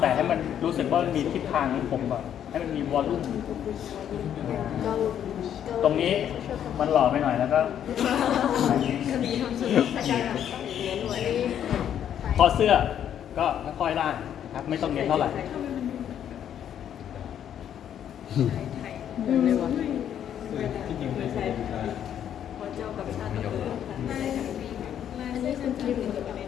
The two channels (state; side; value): quieter; right; 9.7 dB